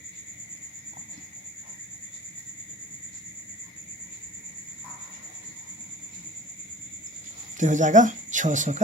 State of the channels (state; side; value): normal; both; correlation 0.46